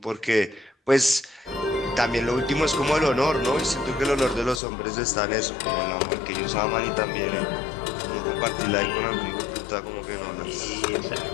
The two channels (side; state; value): right; drops out; at 4.6 s